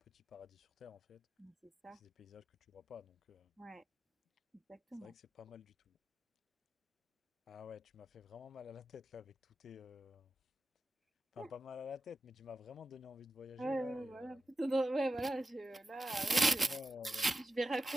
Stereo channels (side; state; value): both; normal; correlation 0.91